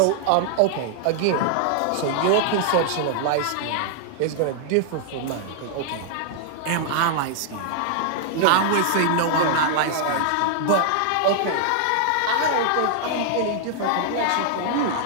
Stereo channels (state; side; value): different; both; correlation -0.01